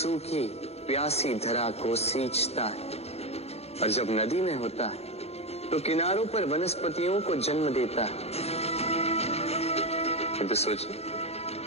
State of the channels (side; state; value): right; late; 0.30 ms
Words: सूखी प्यासी धरा को सींचता है। और जब नदी में होता है तो किनारों पर वनस्पतियों को जन्म देता है। तो सोचिए,